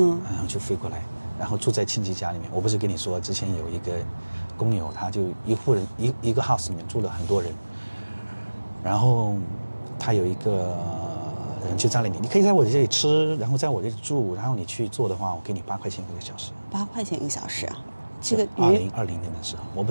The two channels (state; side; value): inverted; both; correlation -1.00